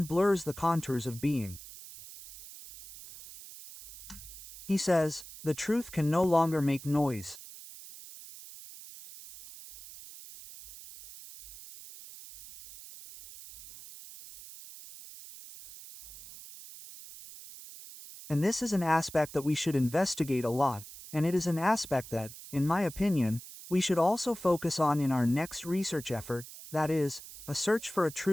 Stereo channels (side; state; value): right; noise; hiss, 15 dB below the sound